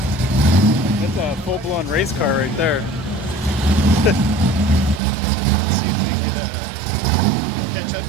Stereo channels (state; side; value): drops out; left; at 5.0 s